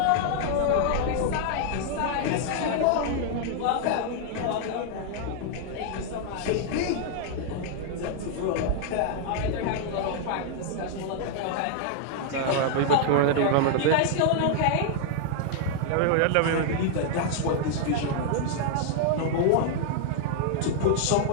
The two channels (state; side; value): different; both; correlation -0.01